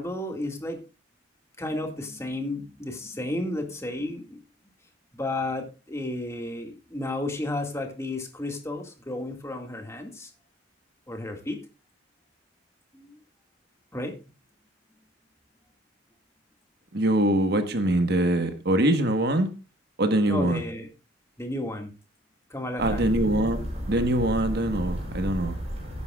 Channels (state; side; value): normal; both; correlation 0.58